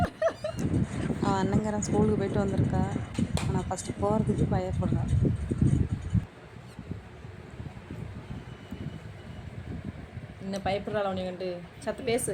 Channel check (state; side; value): identical; both; correlation 1.00